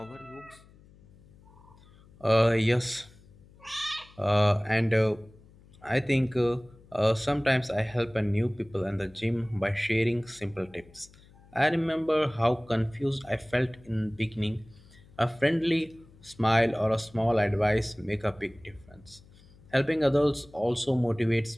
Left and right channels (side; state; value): left; noise; hum, 25 dB below the sound